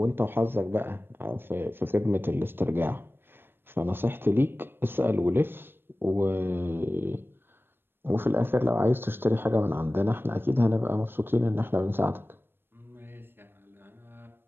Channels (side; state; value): left; late; 0.10 ms